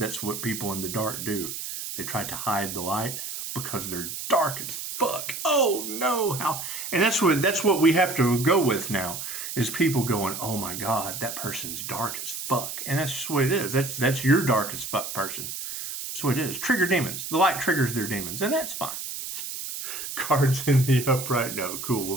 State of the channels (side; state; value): right; noise; hiss, 7 dB below the sound